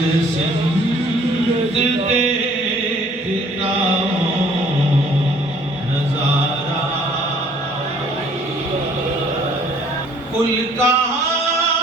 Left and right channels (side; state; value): both; normal; correlation 0.57